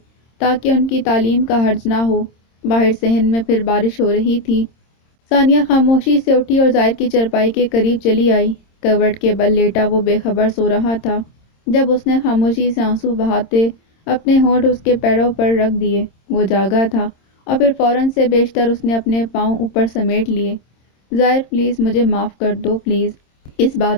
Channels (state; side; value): late; right; 26 ms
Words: تاکہ ان کی تعلیم کا حرج نہ ہو۔ باہر صحن میں پھر بارش ہو رہی تھی۔ ثانیہ خاموشی سے اٹھی اور زائر کی چرپائی کے قریب چلی آئی۔ کروٹ کے بل لیٹا وہ بے خبر سو رہا تھا جب اس نے خاموشی سے آنسو بہاتے اپنے ہونٹ اس کے پیروں پر رکھ دیے۔ وہ جاگا تھا اور پھر فوراً سے بیشتر اس نے اپنے پاؤں اوپر سمیٹ لیے۔ زائر پلیز مجھے معاف کر دو پلیز۔ اس